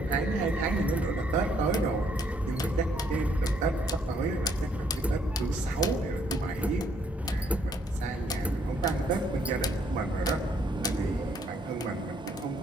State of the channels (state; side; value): normal; both; correlation 0.69